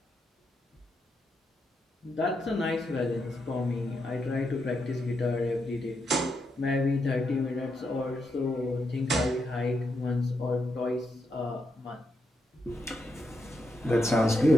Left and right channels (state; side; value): normal; both; correlation 0.82